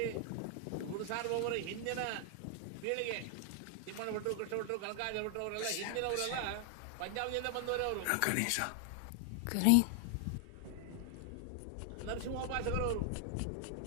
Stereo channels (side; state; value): both; different; correlation 0.00